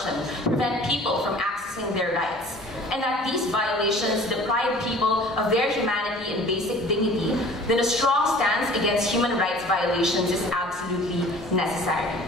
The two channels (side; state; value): both; normal; correlation 0.47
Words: prevent people from accessing their rights, and that these violations deprive people of their humanity and basic dignity, then a strong stance against human rights violations is absolutely necessary.